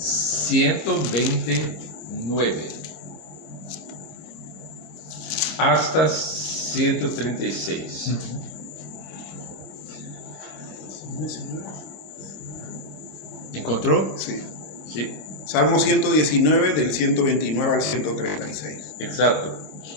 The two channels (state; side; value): late; right; 25 ms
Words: hasta 136. ¿Encontró? Sí. Sí. Salmo 119, del 129 al 136. Exato.